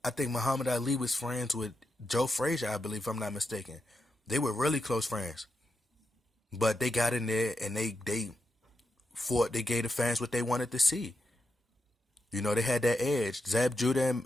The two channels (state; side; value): normal; both; correlation 0.87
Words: I think Muhammad Ali was friends with Joe Frazier, I believe, if I'm not mistaken. They were really close friends, but they got in there and they fought. They gave the fans what they wanted to see. They had that edge. Zab Judah